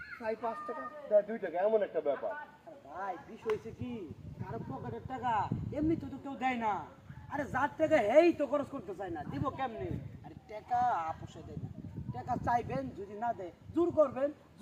প্রায় 5 টাকা দেয় 2 টাকা, এমন একটা ব্যাপার। আরে ভাই বিষয় হয়েছে কি কারো পকেটের টাকা এমনি তো কেউ দেয় না। আরে যার টাকা হেই তো খরচ করতে চায় না, দিব কেমনি? আরে টাকা আপোষে দেয় না, টাকা চাইবেন যদি না দেয় জোর করবেন,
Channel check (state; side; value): identical; both; correlation 1.00